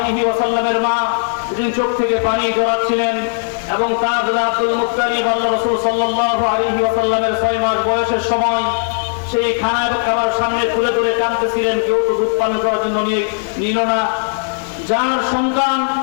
ওয়াসাল্লামের মা, তিনি চোখ থেকে পানি জড়াচ্ছিলেন এবং তার দাদা আব্দুল মুত্তালিব আল্লাহ রাসূল সাল্লাল্লাহু আলাইহি ওয়াসাল্লামের 6 মাস বয়সের সময় সেই খানা এবং খাবার সামনে তুলে ধরে কাঁদতেছিলেন, কেউ তো দুধ পান করার জন্য নিল না। যার সন্তান,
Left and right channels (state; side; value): silent; right; 62 dB below the other